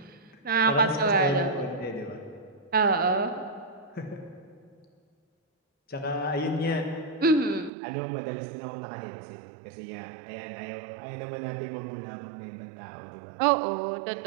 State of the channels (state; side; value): drops out; left; at 7.7 s